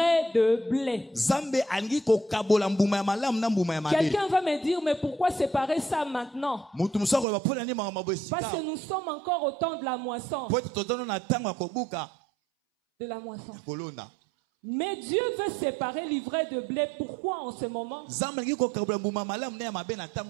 de blé. Quelqu'un va me dire, mais pourquoi séparer ça maintenant? Parce que nous sommes encore au temps de la moisson. De la moisson. Mais Dieu veut séparer l'ivraie de blé. Pourquoi en ce moment? Parce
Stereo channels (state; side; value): drops out; left; at 7.2 s